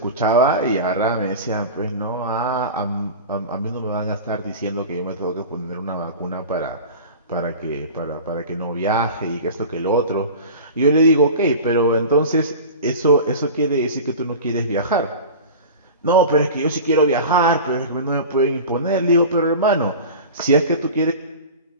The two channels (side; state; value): both; inverted; correlation -0.34